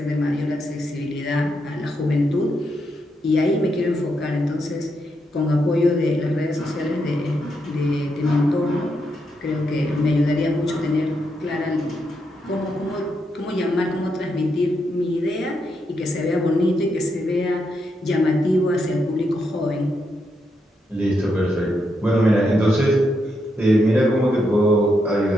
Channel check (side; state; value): both; normal; correlation 0.81